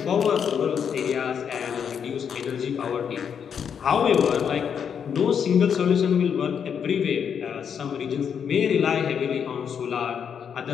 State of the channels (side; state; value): right; quieter; 7.5 dB